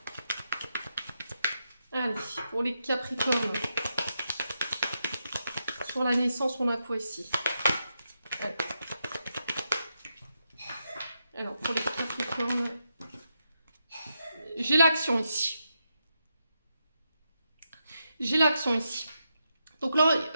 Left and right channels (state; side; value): inverted; both; correlation -0.84